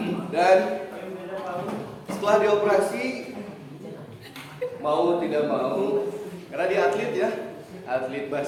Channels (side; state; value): both; identical; correlation 1.00